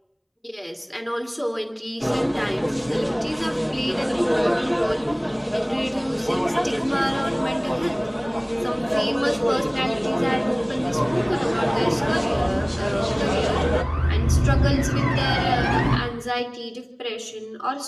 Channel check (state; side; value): identical; both; correlation 1.00